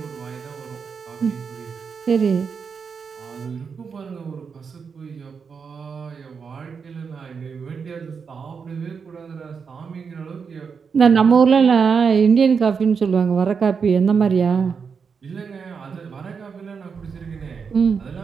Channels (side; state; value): left; quieter; 5.9 dB